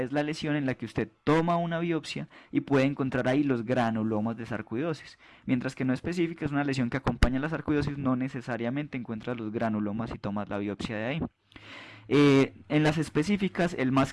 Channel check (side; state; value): both; identical; correlation 1.00